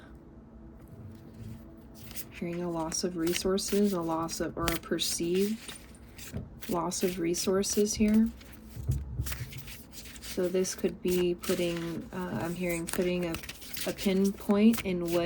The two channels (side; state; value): both; identical; correlation 1.00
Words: Hearing a loss of resources, a loss of, or a perceived loss of resources here. So this could be putting, I'm hearing putting a pinpoint in